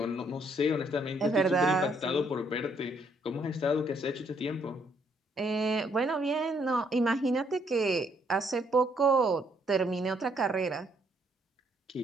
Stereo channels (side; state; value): both; normal; correlation 0.69